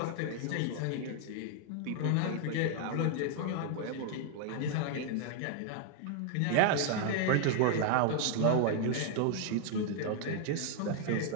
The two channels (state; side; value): different; both; correlation 0.00